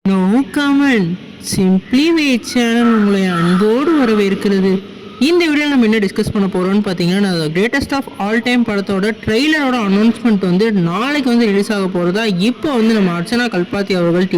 No comment. Simply wait channel உங்களை அன்போடு வரவேற்கிறது. இந்த வீடியோவில் நம்ம என்ன டிஸ்கஸ் பண்ண போகிறோம்னு பார்த்தீங்கன்னா, கிரேட்டஸ்ட் ஆஃப் ஆல் டைம் படத்தோட ட்ரெய்லரோட அனௌன்ஸ்மெண்ட் வந்து நாளைக்கு வந்து ரிலீஸ் ஆக போகிறதா இப்போ வந்து நம்ம அர்ச்சனா கல்பாத்தி அவர்கள்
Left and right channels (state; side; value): identical; both; correlation 1.00